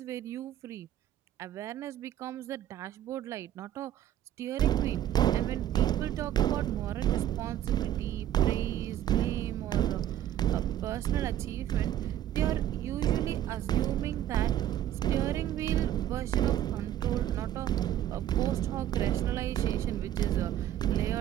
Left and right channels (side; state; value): left; quieter; 11.8 dB